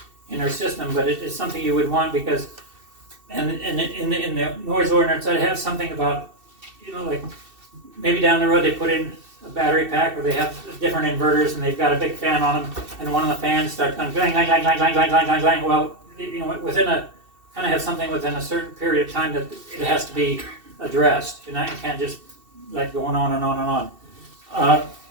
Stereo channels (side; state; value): left; late; 2.7 ms